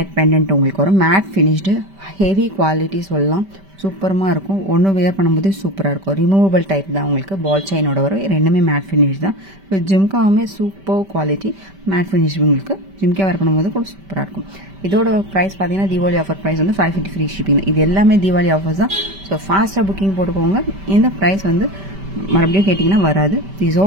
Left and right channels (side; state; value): left; late; 5.1 ms